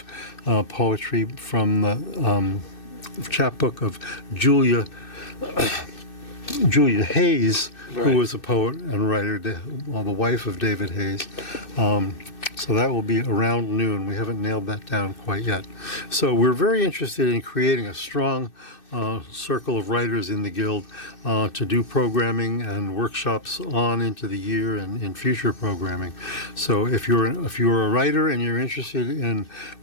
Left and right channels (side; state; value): right; late; 2.6 ms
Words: poetry from the chapbook of Julia Hayes, right, who was a poet and writer, the wife of David Hayes. So that will be around noon. We haven't nailed that down quite yet. So we're very interested in creating a strong circle of writers in the Guild to do programming and workshops on into the year and in future programming. So if you're a writer and you're interested in